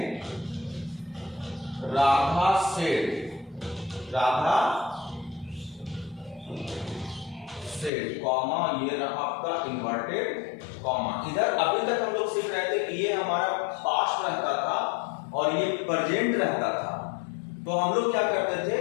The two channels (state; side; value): drops out; right; at 7.9 s